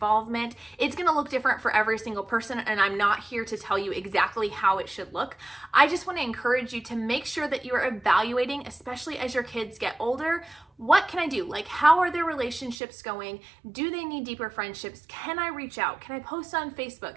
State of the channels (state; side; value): drops out; left; at 12.8 s